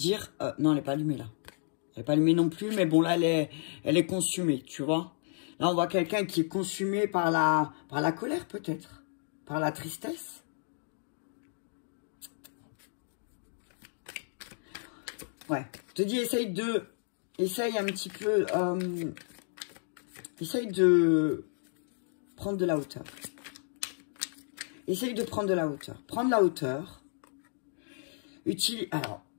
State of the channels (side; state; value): right; silent; digital silence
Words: non, elle n'est pas allumée, là. Elle n'est pas allumée non plus, mais bon, là, elle est consumée, tu vois. Là, on voit quelqu'un qui est consumé par la colère, peut-être. Par la tristesse. Ouais. Je te dis, essaye un petit peu... essaye de prendre de la hauteur. Essaye de prendre de la hauteur. Prendre la hauteur. Alors,